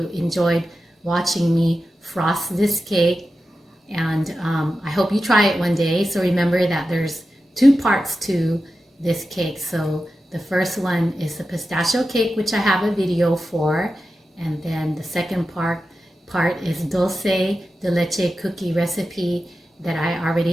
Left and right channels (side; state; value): both; normal; correlation 0.92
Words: enjoyed watching me frost this cake, and I hope you try it one day. So remember that there's 2 parts to this cake. So the first one is the pistachio cake, which I have a video for, and then the second part is dulce de leche cookie recipe that I